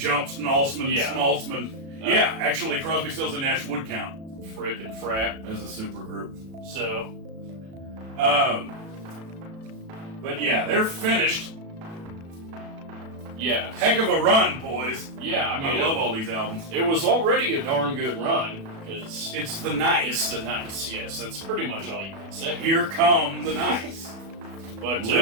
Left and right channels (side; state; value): left; late; 36 ms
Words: Yeah, actually, Crosby, Stills and Nash would count. Fripp and Frapp. As a supergroup. So... But yeah, they're finished. Yeah. Heck of a run, boys. Yeah, I mean... I love all these albums. It was already a darn good run, because... It's the Nice. It's the Nice, yes. That's pretty much all you can say. Here come the Nice. But,